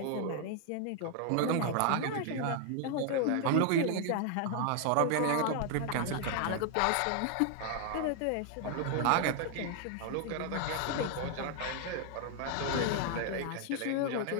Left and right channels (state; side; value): different; both; correlation 0.00